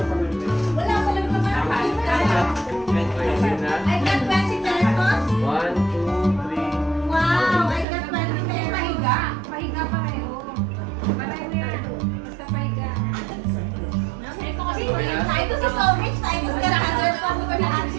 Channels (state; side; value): drops out; left; at 7.9 s